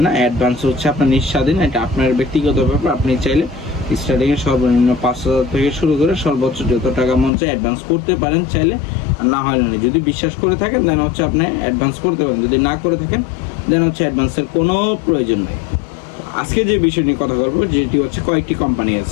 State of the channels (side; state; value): right; drops out; at 7.3 s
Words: না। অ্যাডভান্স হচ্ছে আপনার নিঃস্বাধীন, এটা আপনার ব্যক্তিগত ব্যাপার। আপনি চাইলে স্টার্টিংয়ে সর্বনিম্ন 5,000 থেকে শুরু করে সর্বোচ্চ যত টাকা মন চায় অ্যাডভান্স করতে পারেন চাইলে, আর না হয় না। যদি বিশ্বাস করে থাকেন দেন হচ্ছে আপনি অ্যাডভান্স করতে পারেন, যদি না করে থাকেন দেন হচ্ছে অ্যাডভান্সের কোনো প্রয়োজন নেই। আজকে যে বিষয় নিয়ে কথা বলবো, যেটি হচ্ছে কয়েকটি কোম্পানি